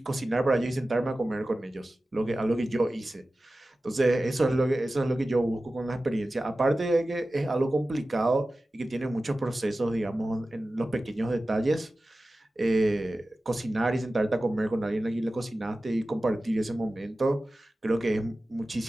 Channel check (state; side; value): normal; both; correlation 0.95